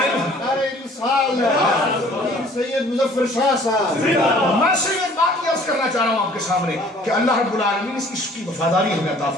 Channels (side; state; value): both; normal; correlation 0.54